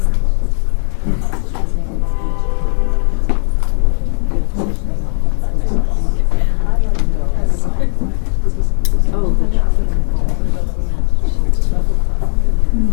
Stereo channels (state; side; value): silent; right; 57 dB below the other